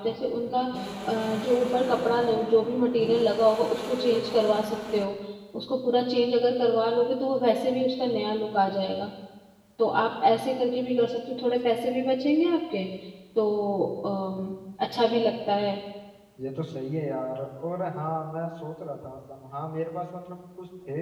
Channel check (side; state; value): both; identical; correlation 1.00